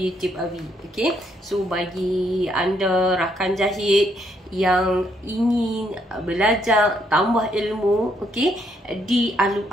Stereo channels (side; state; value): both; normal; correlation 0.73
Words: Awi. Okey, so bagi anda rakan jahit yang ingin belajar tambah ilmu, okey,